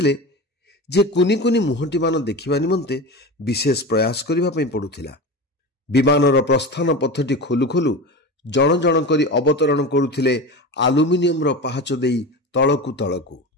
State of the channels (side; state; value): both; normal; correlation 0.27